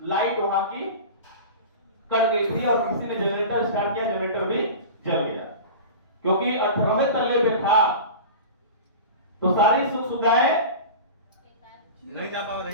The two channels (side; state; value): both; inverted; correlation -0.33